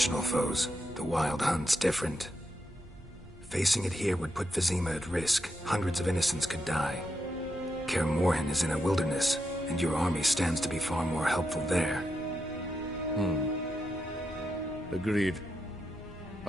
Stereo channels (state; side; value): normal; both; correlation 0.84